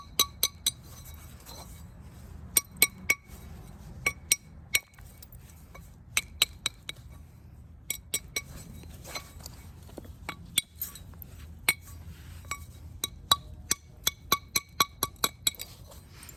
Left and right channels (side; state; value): both; identical; correlation 1.00